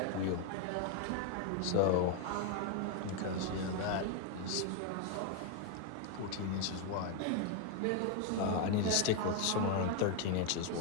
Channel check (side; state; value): both; different; correlation 0.01